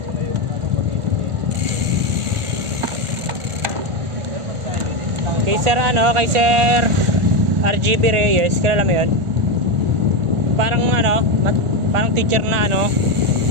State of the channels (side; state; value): left; late; 1.4 ms